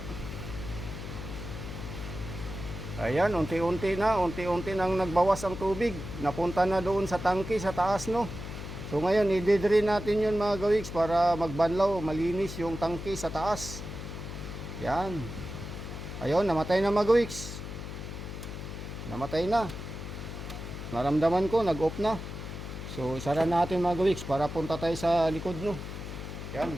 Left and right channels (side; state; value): left; noise; hum, 8 dB below the sound